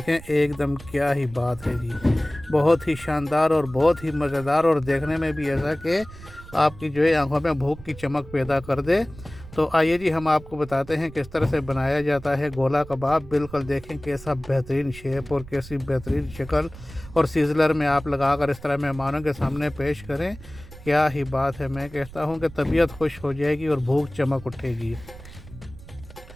एकदम क्या ही बात है जी, बहुत ही शानदार और बहुत ही मज़ेदार, और देखने में भी ऐसा कि आपकी जो है आंखों में भूख की चमक पैदा कर दे। तो आइए जी, हम आपको बताते हैं किस तरह से बनाया जाता है गोला कबाब। बिल्कुल देखें कैसा बेहतरीन शेप और कैसी बेहतरीन शक्ल, और सीजलर में आप लगाकर इस तरह मेहमानों के सामने पेश करें। क्या ही बात है, मैं कहता हूँ कि तबीयत खुश हो जाएगी और भूख चमक उठेगी।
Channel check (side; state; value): right; noise; rumble, 17 dB below the sound